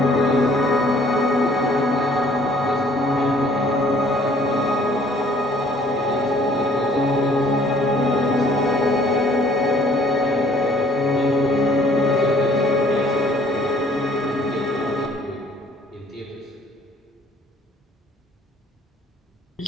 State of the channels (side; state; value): both; normal; correlation 0.59